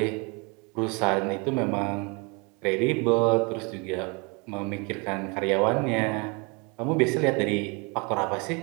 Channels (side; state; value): left; quieter; 30.5 dB